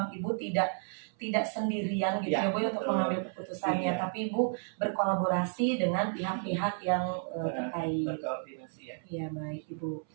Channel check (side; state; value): left; silent; 56 dB below the other